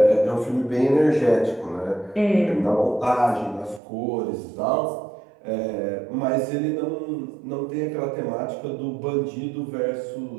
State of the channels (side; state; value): left; drops out; at 3.8 s